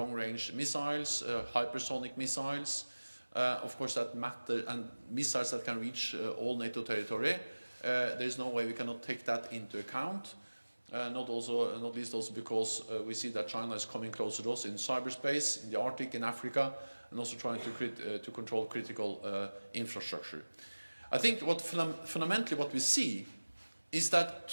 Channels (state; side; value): inverted; both; correlation -1.00